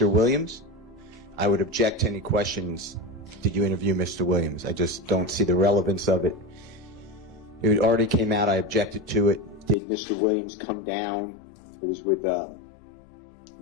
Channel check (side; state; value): right; drops out; at 9.8 s